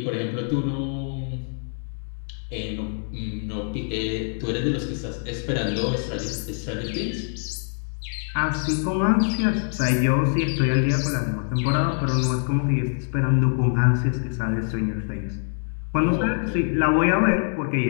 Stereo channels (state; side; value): silent; right; 62 dB below the other